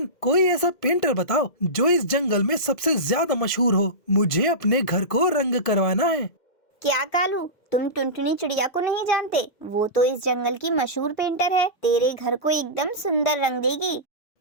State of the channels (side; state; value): right; late; 1.5 ms